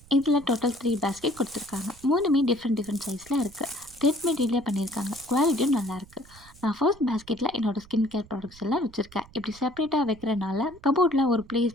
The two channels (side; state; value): right; noise; rumble, 23 dB below the sound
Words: இதில் டோட்டல் 3 பேஸ்கெட் கொடுத்துருக்காங்க. மூணுமே டிஃப்ரெண்ட் சைஸில் இருக்குது. த்ரெட் மெட்டீரியல் பண்ணியிருக்காங்க. குவாலிட்டியும் நல்லாயிருக்கு. நான் ஃபர்ஸ்ட் பேஸ்கெட்டில் என்னோடய ஸ்கின் கேர் ப்ராடக்ட்ஸ் எல்லாம் வச்சுருக்கேன். இப்படி செப்பரேட்டாக வைக்கிறனால கபோர்டில் ஒரு